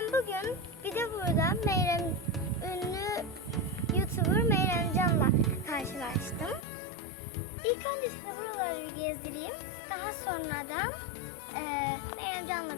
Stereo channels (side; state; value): right; drops out; at 6.7 s